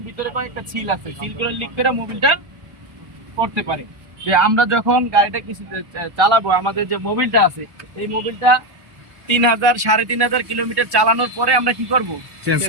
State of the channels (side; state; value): left; late; 1.1 ms